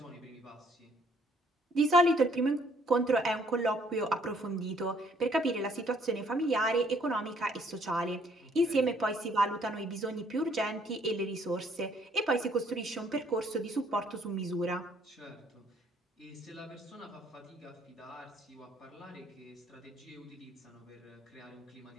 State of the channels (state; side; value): normal; both; correlation 0.64